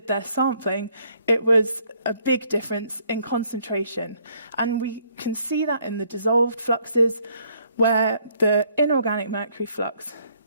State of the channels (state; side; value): inverted; both; correlation -0.67